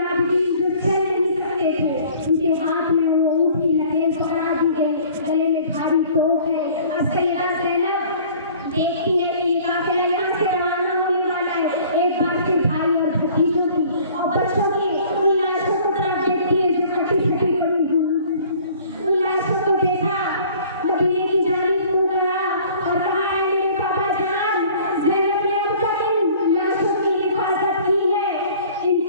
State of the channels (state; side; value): inverted; both; correlation -0.51